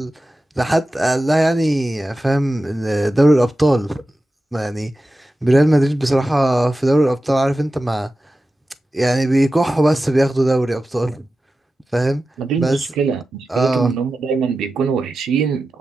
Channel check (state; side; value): normal; both; correlation 0.94